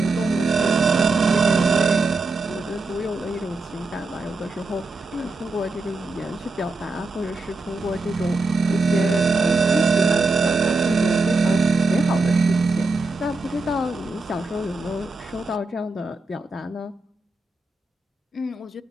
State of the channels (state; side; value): quieter; left; 3.4 dB